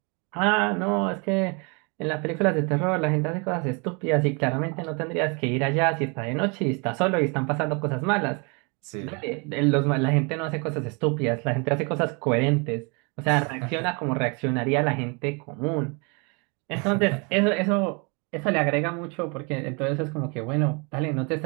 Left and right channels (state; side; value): quieter; left; 32.3 dB